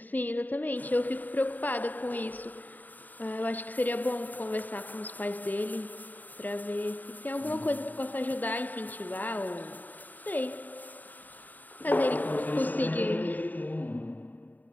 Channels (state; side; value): late; right; 0.084 ms